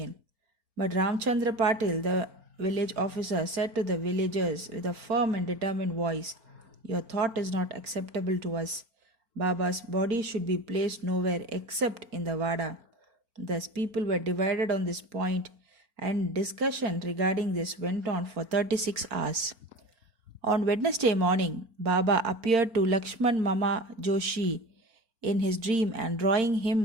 But Ramchandra Patil, the village officer, said to the villagers with a firm and determined voice, your thought is not acceptable to us. Baba's body should be placed nowhere except in the Vada. Thus people were divided on this point, and discussion regarding this went on for 36 hours. On Wednesday morning, Baba appeared to Lakshman Mama Joshi in his dream and drawing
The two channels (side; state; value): left; late; 4.4 ms